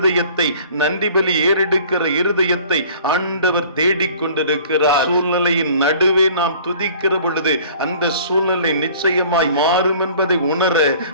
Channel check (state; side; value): inverted; both; correlation -0.50